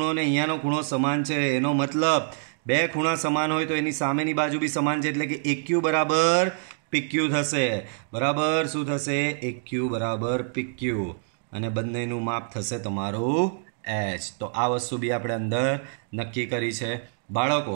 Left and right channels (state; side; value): silent; left; digital silence